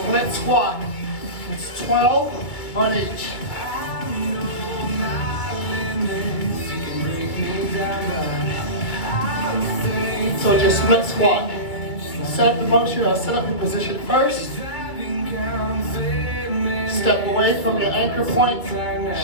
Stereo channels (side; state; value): right; late; 2.2 ms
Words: squat. It's 12 on each. So just split squat. Set up the motion, or set up your position first. Step away from your anchor point,